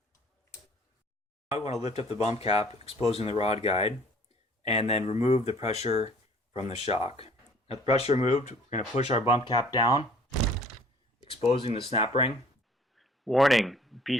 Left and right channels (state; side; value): normal; both; correlation 0.54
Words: Now we want to lift up the bump cap, exposing the rod guide, and then remove the pressure from the shock. Now the pressure removed, we're going to push our bump cap down, exposing the snap ring. Warning: be